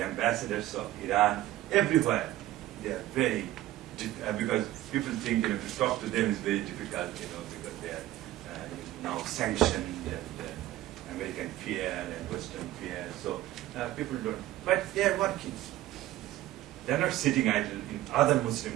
ambassadors of Iran, everywhere, they are very, because people think, to talk to them is very difficult, because they are now sanctioned and American fear and Western fear. So people don't, but they are working. They're not sitting idle in other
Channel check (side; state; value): left; quieter; 14.8 dB